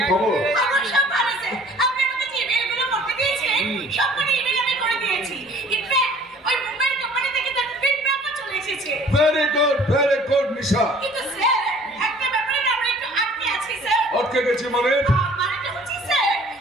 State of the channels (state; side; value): normal; both; correlation 0.52